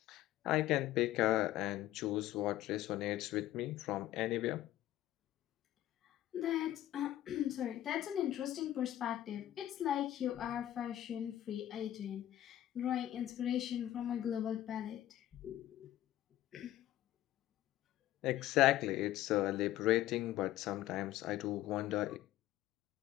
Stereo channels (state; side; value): quieter; right; 13.7 dB